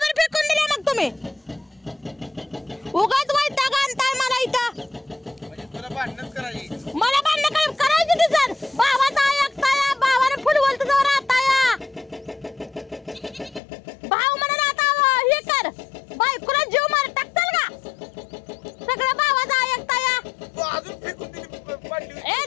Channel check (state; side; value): drops out; right; at 13.6 s